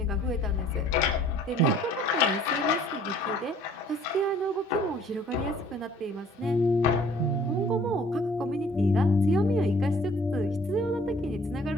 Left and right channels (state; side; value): normal; both; correlation 0.56